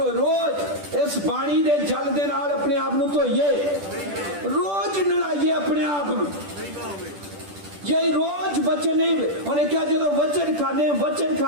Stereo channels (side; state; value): left; late; 10 ms